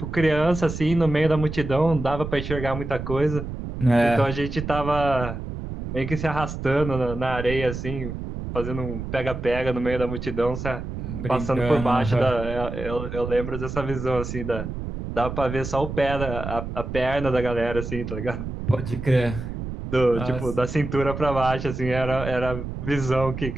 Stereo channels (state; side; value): noise; right; rumble, 7 dB below the sound